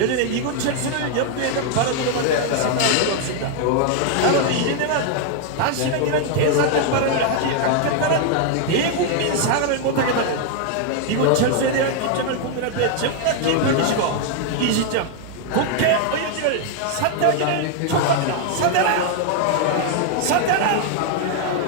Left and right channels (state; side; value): different; both; correlation 0.00